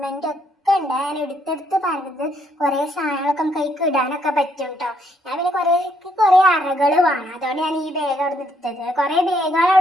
ഒക്കെ ഉണ്ട്. ഞാൻ എടുത്തെടുത്ത് പറഞ്ഞത് കുറേ സാധനങ്ങളൊക്കെ നമുക്ക് കൈക്ക് ഇടാനൊക്കെ പറ്റും കേട്ടോ. ഞാൻ പിന്നെ കുറേ അറകൾ വേണം, അതുകൊണ്ട് ഞാൻ ഈ ബാഗ് അവിടെ നിന്ന് എടുത്തത്. കുറേ ബാഗുകൾ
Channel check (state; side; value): normal; both; correlation 0.71